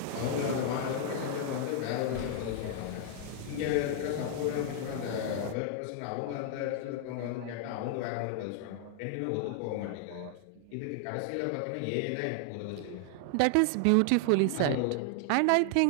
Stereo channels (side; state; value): both; different; correlation 0.00